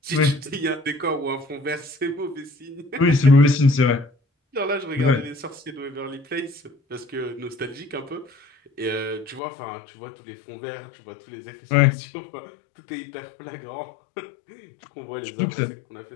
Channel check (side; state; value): right; drops out; at 9.4 s